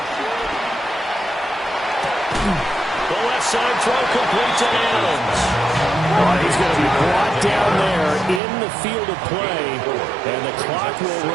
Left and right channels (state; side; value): drops out; left; at 8.4 s